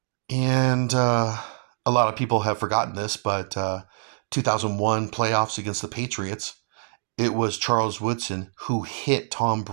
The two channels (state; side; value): silent; left; digital silence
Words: And a lot of people have forgotten this, but 2001 playoffs against the Patriots, it was Charles Woodson who hit Tom